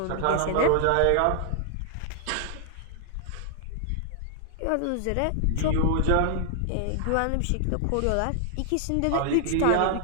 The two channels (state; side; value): different; both; correlation 0.00